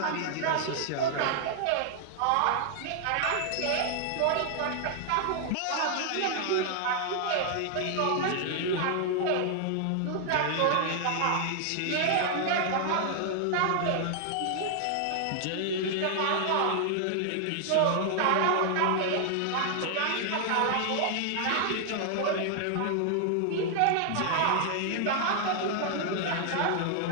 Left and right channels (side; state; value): both; different; correlation 0.00